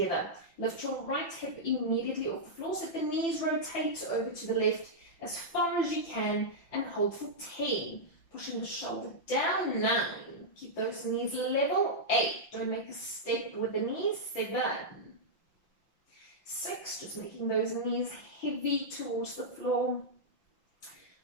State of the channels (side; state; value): right; late; 5.8 ms